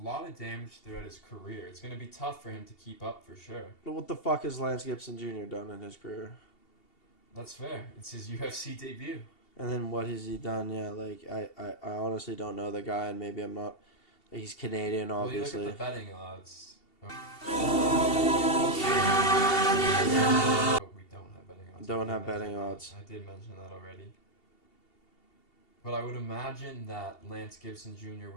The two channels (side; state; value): right; late; 2.7 ms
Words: lot of damage throughout his career. It's going to be tough for him to keep up for sure. But what the fuck has Lance Gibson Jr. done in his career? That's fair. It's his UFC debut. And then what has he done? Yeah, like I honestly don't know the guy, and maybe I'm not. He's Canadian, obviously. Well, you look at the betting odds. But we don't have betting odds. Don't have I did betting mention odds. that. I did mention that already. But I would imagine that Lance Gibson Jr.